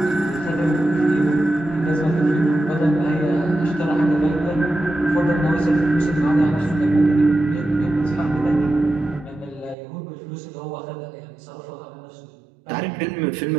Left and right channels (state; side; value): drops out; left; at 9.8 s